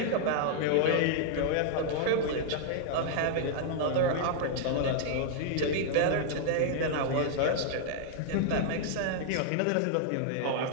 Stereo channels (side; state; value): both; different; correlation -0.01